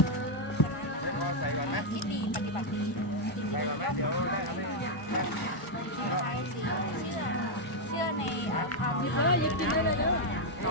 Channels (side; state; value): right; late; 1.2 ms